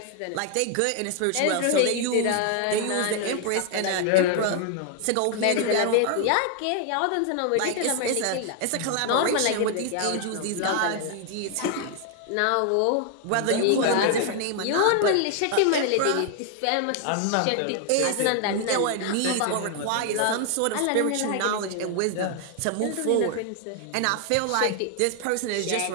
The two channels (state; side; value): different; both; correlation 0.00